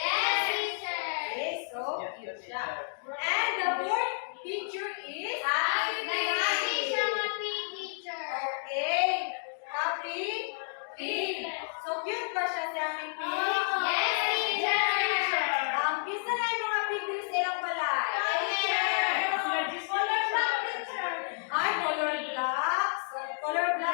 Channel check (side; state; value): right; silent; digital silence